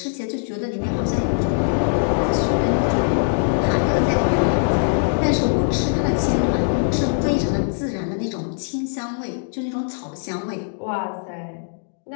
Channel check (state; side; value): silent; right; digital silence